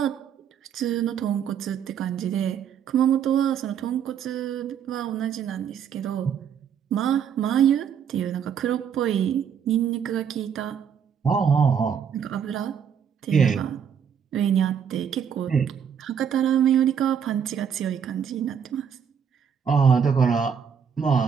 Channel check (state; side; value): quieter; left; 7.7 dB